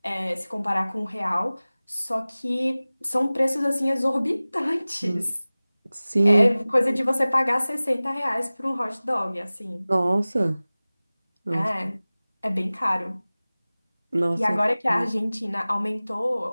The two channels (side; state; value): both; inverted; correlation -0.99